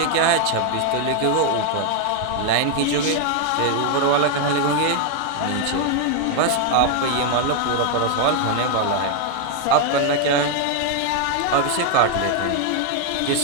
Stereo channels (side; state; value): both; different; correlation 0.00